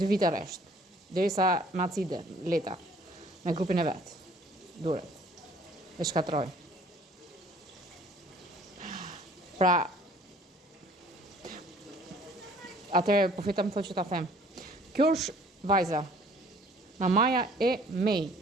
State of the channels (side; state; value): both; normal; correlation 0.55